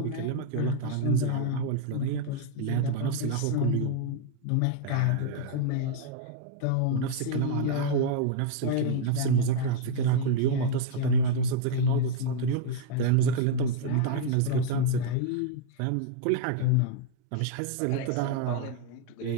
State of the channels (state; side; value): different; both; correlation 0.00